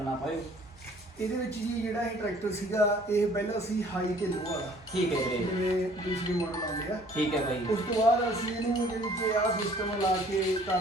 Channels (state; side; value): normal; both; correlation 0.55